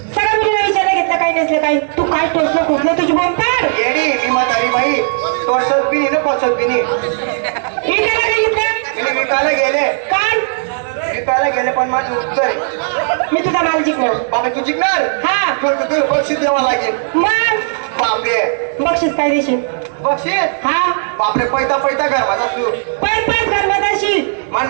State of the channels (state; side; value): silent; left; digital silence